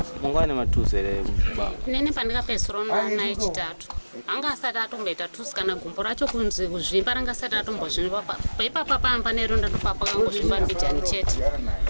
mungane matuzo ere baba. Nene pandikapesoro na echitatu. Anga asati atomboita tusi kana gumbo racho kunzi kuzvimba ranga asati atombozvimba paipapa pamba neronda ndopapa kangozvimba mbijani chete.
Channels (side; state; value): both; inverted; correlation -1.00